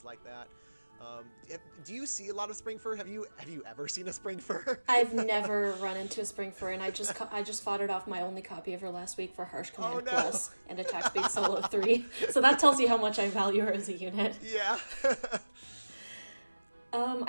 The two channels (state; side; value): inverted; both; correlation -1.00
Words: like that. Do you see a lot of Spring Fur? Have you ever seen a Spring Fur? I've never run into a Spring Fur, and I just fought it off my only copy of her last week for Harsh Command Plus and Attack Speed Solo 3. So that tells you how much I value her as a unit. Yeah.